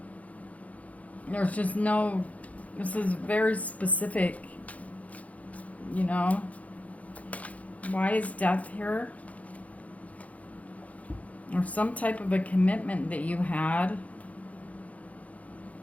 There's just no, this is very specific, you know. Why is Death here? Or some type of a commitment that you had.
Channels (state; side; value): late; right; 0.069 ms